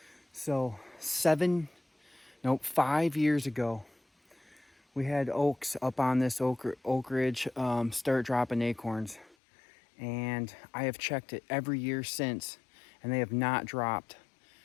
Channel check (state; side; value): drops out; right; at 9.3 s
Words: So 5 years ago, we had oaks up on this oak ridge start dropping acorns, and I have checked it every year since, and they have not dropped.